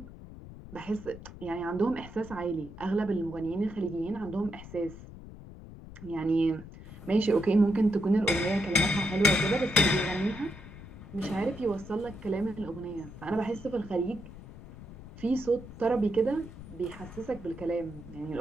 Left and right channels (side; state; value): left; noise; rumble, 15 dB below the sound